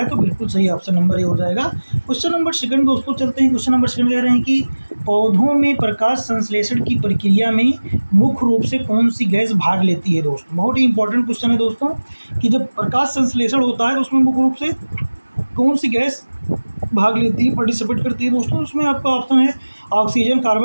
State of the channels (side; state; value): both; inverted; correlation -1.00